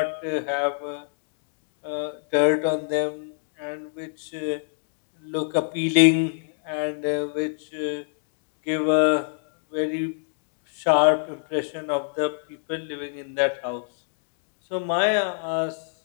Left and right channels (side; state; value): right; silent; digital silence